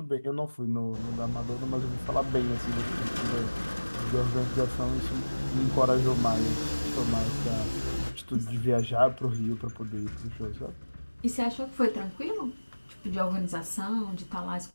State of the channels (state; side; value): inverted; both; correlation -1.00